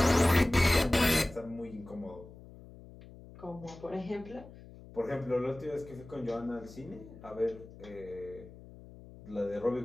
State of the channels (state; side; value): noise; left; hum, 18 dB below the sound